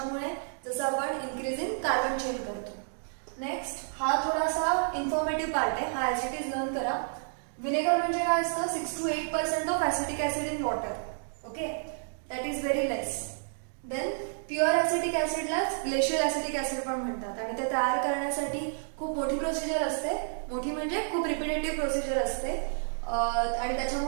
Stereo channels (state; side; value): silent; left; digital silence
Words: जसं आपण इन्क्रीज इन कार्बन चेन करतो. नेक्स्ट, हा थोडासा इन्फॉर्मेटिव्ह पार्ट आहे, हा ऍसिड लर्न करा. विनेगर म्हणजे काय असतं? 6 to 8% of acetic acid in water. Okay, that is very less. Then pure acetic ऍसिडलाच ग्लेशियल ऍसिटिक ऍसिड पण म्हणतात आणि ते तयार करण्यासाठी खूप मोठी प्रोसिजर असते. मोठी म्हणजे खूप रिपिटेटिव्ह प्रोसिजर असते. आणि